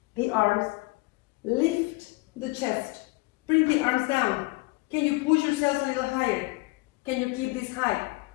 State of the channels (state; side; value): quieter; right; 24.3 dB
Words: the arms. Lift the chest. Bring the arms down. Can you push yourself a little higher? Can you keep this high?